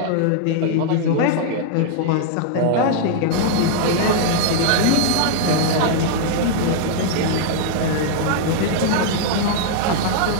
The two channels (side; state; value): both; different; correlation -0.01